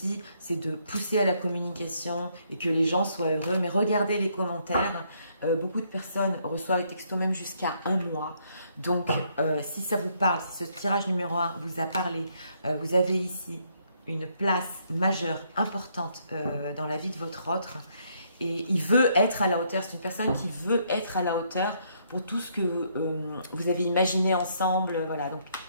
c'est de pousser à la communication et que les gens soient heureux. Mais regardez les commentaires. Beaucoup de personnes reçoivent les textos même jusqu'à 1 mois. Donc, si ça vous parle, si ce tirage numéro 1 vous a parlé, vous avez ici une place majeure, importante dans la vie de votre autre. Et il veut être à la hauteur. C'est une personne qui veut être à la hauteur pour tout ce que vous avez imaginé ensemble. Voilà. Donc,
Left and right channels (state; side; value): inverted; both; correlation -0.71